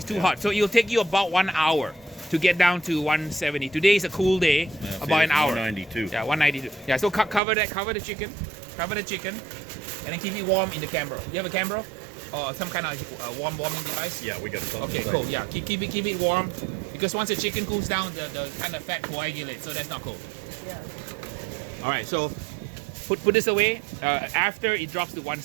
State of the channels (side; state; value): left; drops out; at 7.4 s